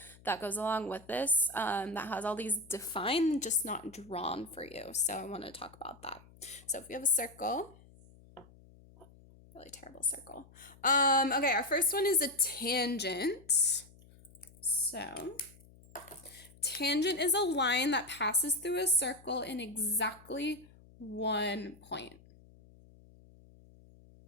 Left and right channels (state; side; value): noise; left; hum, 24 dB below the sound